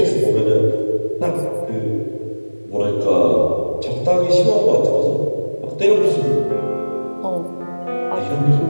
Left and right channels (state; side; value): inverted; both; correlation -1.00